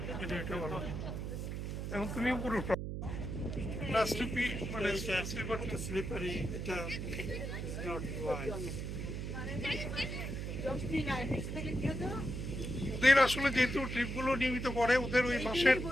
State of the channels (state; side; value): noise; right; hum, 4 dB below the sound